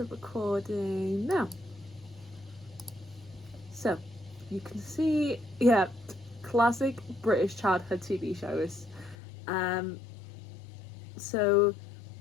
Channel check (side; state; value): right; drops out; at 9.2 s